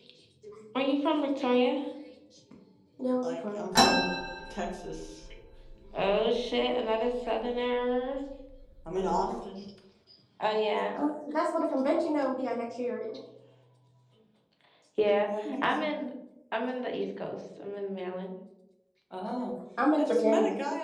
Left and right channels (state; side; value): identical; both; correlation 1.00